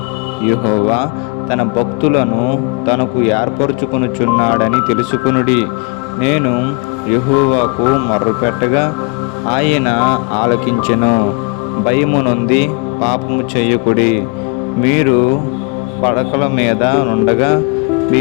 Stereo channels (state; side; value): quieter; right; 31.7 dB